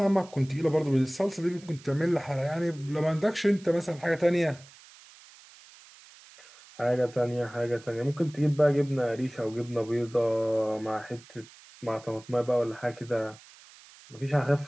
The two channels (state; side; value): noise; right; hiss, 22 dB below the sound